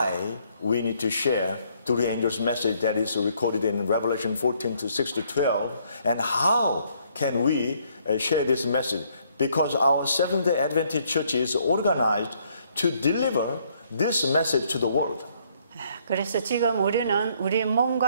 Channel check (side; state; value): both; inverted; correlation -0.68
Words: we need to share three angels message that is recorded in Revelation 14 to 6 to 12, and how can we share this message. because our Seventh-day Adventist Church is organized to deliver this message to the world. 그래서 지금 우리는 우리